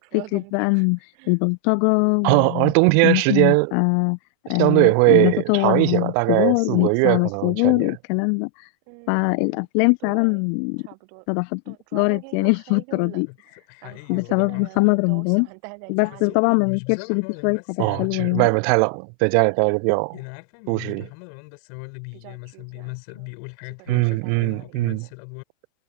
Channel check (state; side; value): different; both; correlation 0.00